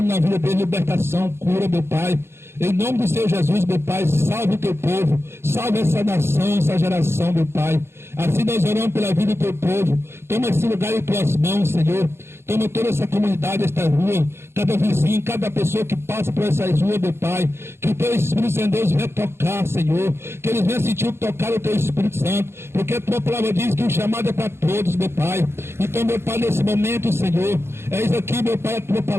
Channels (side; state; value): left; late; 0.12 ms